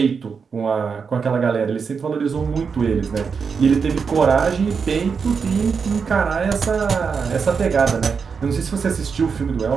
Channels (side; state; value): left; quieter; 5.8 dB